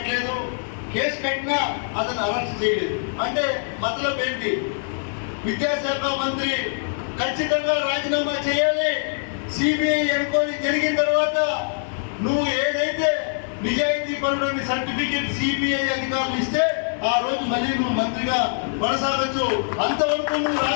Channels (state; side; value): silent; right; digital silence